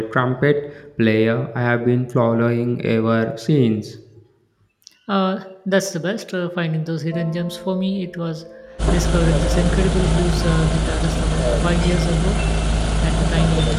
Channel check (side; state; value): both; identical; correlation 1.00